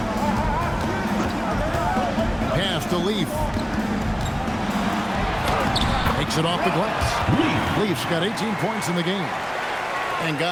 Pass to Leaf. Takes it off the glass. Leaf's got 18 points in the game. And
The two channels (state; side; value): identical; both; correlation 1.00